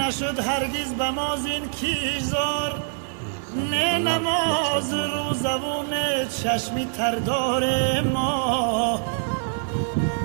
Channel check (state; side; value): silent; left; digital silence